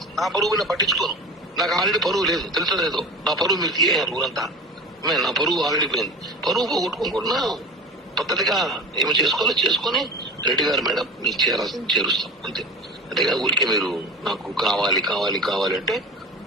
నా పరువు నేను పట్టించుకోను. నాకు ఆల్రెడీ పరువు లేదు, తెలుసలేదు. నా పరువు మీరు తీయారు ఊరంతా. నా పరువు ఆల్రెడీ పోయింది. పరువు పోగొట్టుకోకుండా పద్ధతిగా ఏమి చేసుకోవాలో చేసుకొని రెడ్డి గారు మేడం మీకు చేరుస్తాం అంతే. అంతేగా ఊరికే మీరు నాకు కావాలి అంటే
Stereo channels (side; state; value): both; normal; correlation 0.33